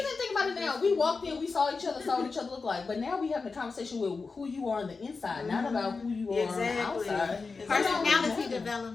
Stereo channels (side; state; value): right; quieter; 4.4 dB